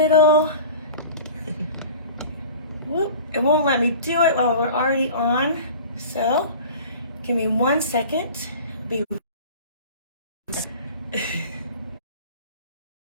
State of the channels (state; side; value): inverted; both; correlation -0.41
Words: Whoop, it won't let me do it while we're already on. So give me 1 second. Be